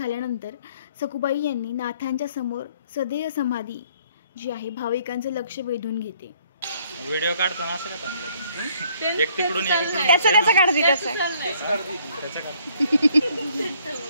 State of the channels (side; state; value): both; inverted; correlation -0.64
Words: सखुबाई यांनी नाथांच्या समोर सदैव समाधी जी आहे भाविकांचं लक्ष वेधून घेते. व्हिडिओ काढताना असं का थांबलं? एक तिकडून त्याचं काढते त्याचं